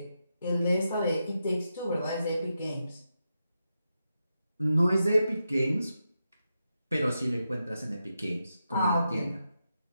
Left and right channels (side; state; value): both; inverted; correlation -0.86